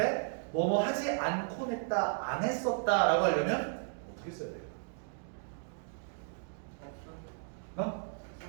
뭐뭐 하지 않곤 했다, 안 했었다 라고 하려면 어떻게 써야 돼요? 어?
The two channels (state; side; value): silent; left; digital silence